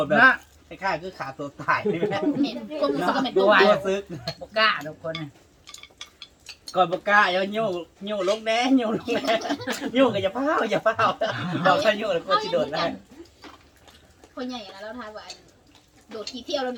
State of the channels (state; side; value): identical; both; correlation 1.00